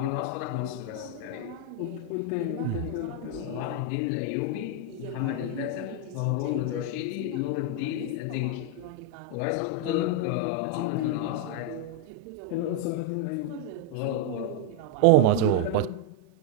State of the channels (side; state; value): both; different; correlation 0.00